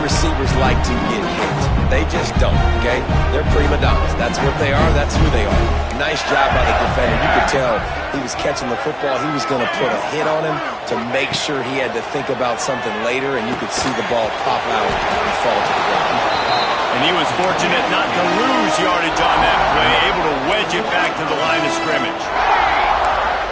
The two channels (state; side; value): identical; both; correlation 1.00